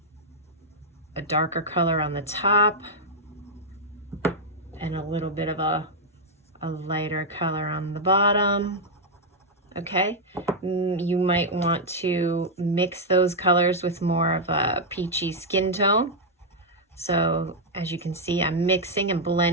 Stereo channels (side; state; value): both; normal; correlation -0.03